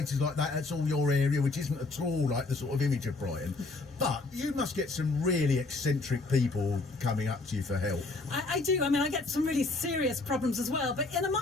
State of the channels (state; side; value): quieter; right; 3.5 dB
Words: like that. That's all your area, which isn't at all like the sort of image of Brighton. But you must get some really eccentric people coming up to you for help. I do. I mean, I get some really serious problems as well. But in